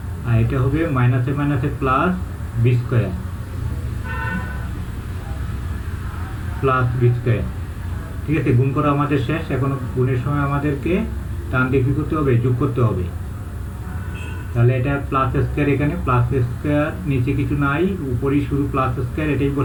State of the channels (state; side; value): identical; both; correlation 1.00